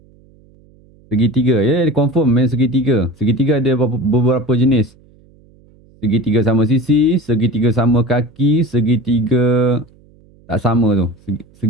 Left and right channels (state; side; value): noise; right; hum, 29 dB below the sound